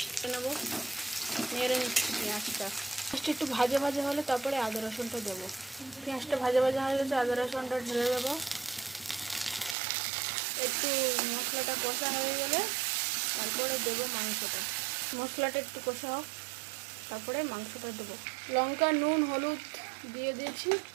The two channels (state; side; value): drops out; left; at 9.8 s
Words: নেবো, নেড়ে নিচ্ছি পেঁয়াজটা। পেঁয়াজটা একটু ভাজা ভাজা হলে তারপরে আদা রসুনটা দেবো। পেঁয়াজটা ভাজা ভাজা হয়ে গেছে, আদা রসুনটা ঢেলে দেবো। একটু মশলাটা কষা হয়ে গেলে তারপরে দেবো মাংসটা। মশলাটা একটু কষা হোক, তারপরে মাংসটা দেবো। লঙ্কা, নুন, হলুদ দিয়ে দিয়েছি।